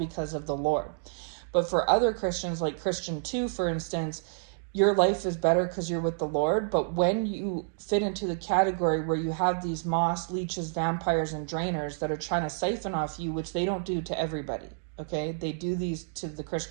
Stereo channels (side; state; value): left; silent; digital silence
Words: of the Lord. But for other Christians, like Christian 2, for instance, your life is better because you're with the Lord. But when you fit into the category where you have these moss, leeches, vampires, and drainers that are trying to siphon off you, which they don't do to everybody, okay? They do these to